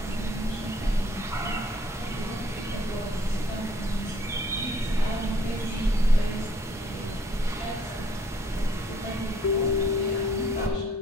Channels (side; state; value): both; normal; correlation 0.62